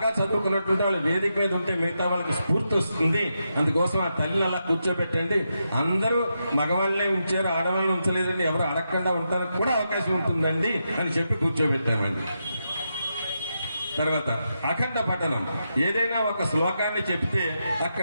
చదువుకున్నటువంటి వాళ్ళు వేదిక మీద ఉంటే మిగతా వాళ్ళకి స్ఫూర్తి వస్తుంది, అందుకోసం ఆ తల్లిని అలా కూర్చోబెట్టండి. అందరూ మగవాళ్ళనే ఉంచారు, ఆడవాళ్ళని ఉంచలేదండి, ఎవరు అడగకుండా ఉండడానికి కూడా అవకాశం ఉంటుందండి అని చెప్పి కూర్చోబెట్టామండి. తర్వాత అఖండ పఠనం, ఏదైనా ఒక శ్లోకాన్ని చెప్తే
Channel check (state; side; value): inverted; both; correlation -0.85